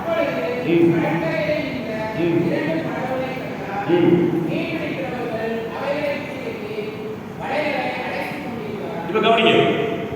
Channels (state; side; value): identical; both; correlation 1.00